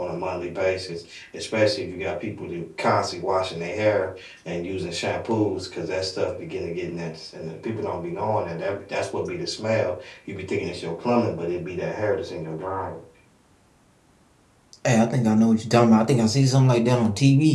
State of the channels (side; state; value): both; identical; correlation 1.00